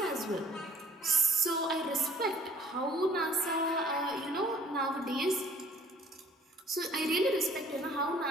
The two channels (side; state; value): both; normal; correlation 0.53